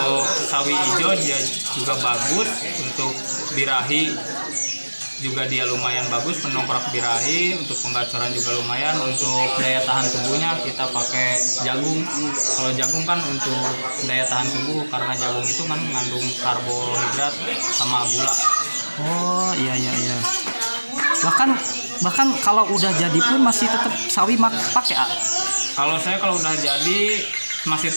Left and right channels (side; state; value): both; inverted; correlation -1.00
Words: sawi hijau dia juga bagus, untuk birahi juga dia lumayan bagus, pendongkrak birahi. Untuk penggacoran juga lumayan. Untuk daya tahan tubuhnya kita pakai jagung. Kalau jagung kan untuk daya tahan tubuh, karena jagung itu kan mengandung karbohidrat sama gula. Oh iya, iya, iya. Bahkan kalau udah jadi pun masih tetap sawi pakai Kalau saya kalau udah jadi masih